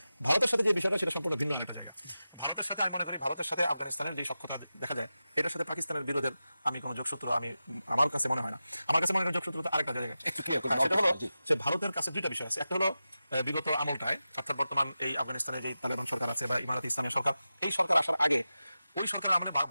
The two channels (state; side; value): inverted; both; correlation -0.93